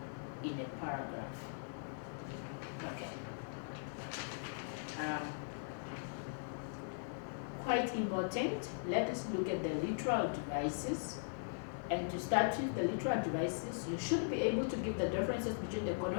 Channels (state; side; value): silent; right; digital silence